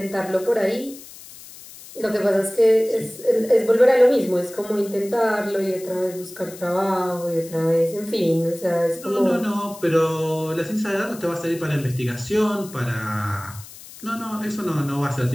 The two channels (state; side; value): noise; left; hiss, 17 dB below the sound